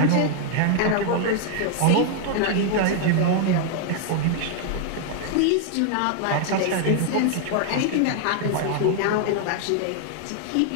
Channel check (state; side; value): different; both; correlation 0.00